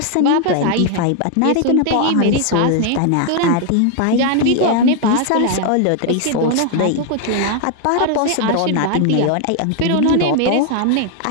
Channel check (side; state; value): both; different; correlation 0.00